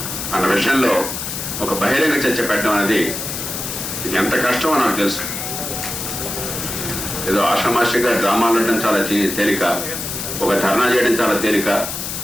అన్న విషయంలో ఒక బహిరంగ చర్చ పెట్టడం అనేది ఎంత కష్టమో నాకు తెలుసు. ఏదో ఆషామాషిగా డ్రామాలు ఉండడం చాలా తేలిక, ఒక ధర్నా చేయడం చాలా తేలిక,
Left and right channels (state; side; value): noise; left; hiss, 5 dB below the sound